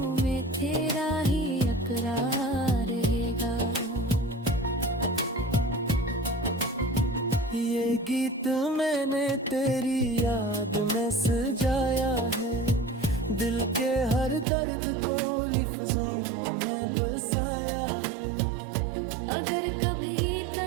में तेरा ही इकरार रहेगा। ये गीत मैंने तेरी याद में सजाया है, दिल के हर दर्द को लफ्जों में बसाया है। अगर कभी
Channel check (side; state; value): left; drops out; at 14.5 s